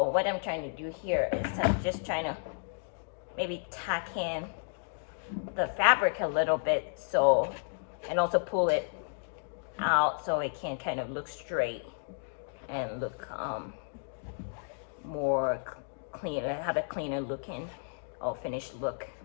what I'm trying to do here is I'm just trying to maybe tack in the fabric a little bit, so, and also pull it out so it can kind of look straight and look more clean, have a cleaner looking or finished look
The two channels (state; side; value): silent; right; digital silence